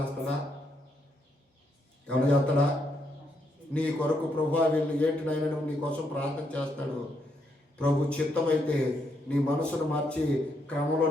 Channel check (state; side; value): normal; both; correlation 0.77